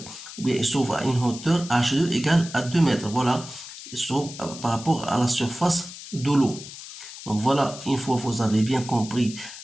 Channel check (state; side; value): noise; left; hiss, 13 dB below the sound